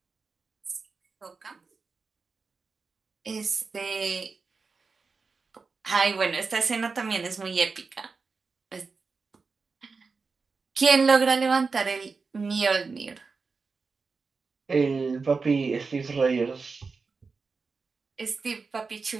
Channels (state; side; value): quieter; left; 4.6 dB